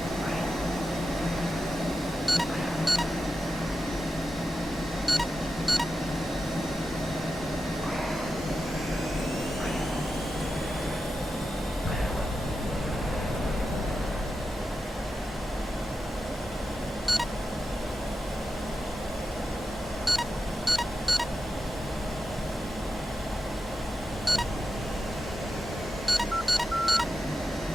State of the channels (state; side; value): normal; both; correlation 0.90